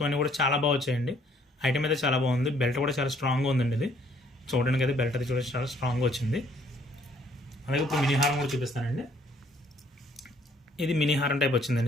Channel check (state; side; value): normal; both; correlation 0.63